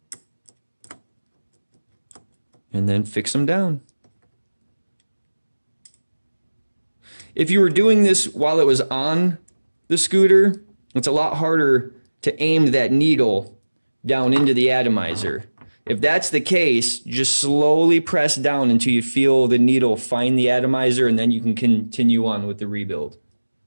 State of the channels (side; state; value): both; inverted; correlation -1.00